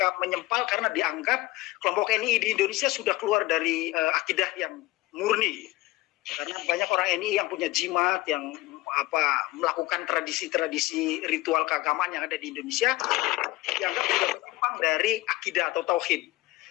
menyempal karena dianggap kelompok NII di Indonesia sudah keluar dari akidah yang murni. Karena banyak orang NII yang punya jimat, yang melakukan tradisi-tradisi ritual keagamaan yang ada di Indonesia, dianggap sudah menyimpang dari akidah atau tauhid.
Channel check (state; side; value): quieter; right; 19.2 dB